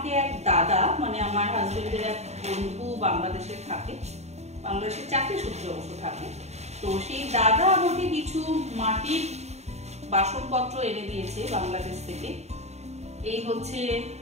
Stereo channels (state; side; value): late; left; 0.32 ms